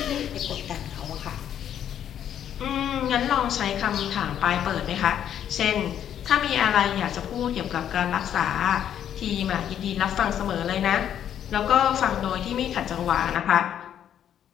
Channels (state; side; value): quieter; right; 9.9 dB